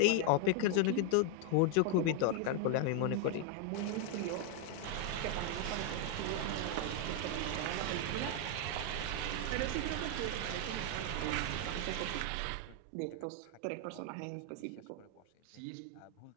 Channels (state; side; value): different; both; correlation 0.00